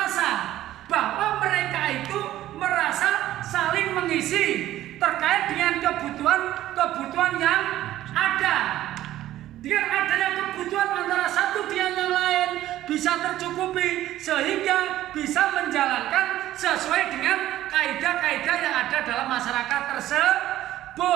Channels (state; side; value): quieter; left; 13.9 dB